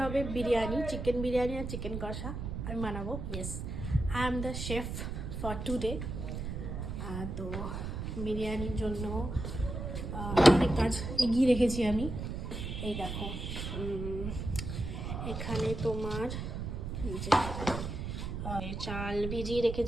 হবে বিরিয়ানি, চিকেন বিরিয়ানি আর চিকেন কষা আমি বানাবো। Yes, I am the chef for today. তো বিরিয়ানির জন্য অনেক কাজ এগিয়ে রেখেছি আমি। এই দেখো, এখানে তোমার যে চাল ভিজিয়ে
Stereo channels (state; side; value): noise; right; rumble, 5 dB below the sound